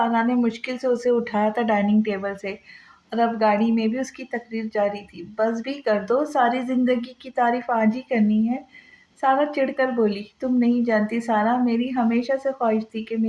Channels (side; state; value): both; identical; correlation 1.00